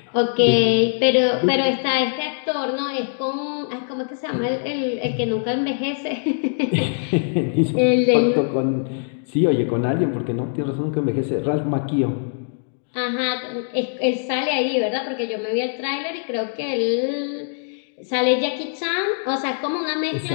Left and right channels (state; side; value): silent; right; digital silence